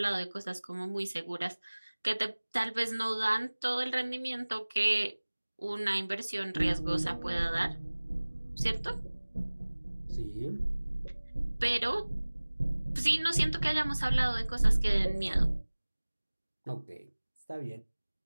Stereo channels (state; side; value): inverted; both; correlation -1.00